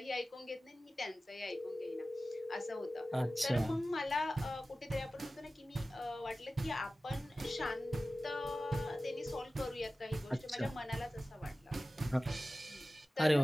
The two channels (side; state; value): both; normal; correlation 0.96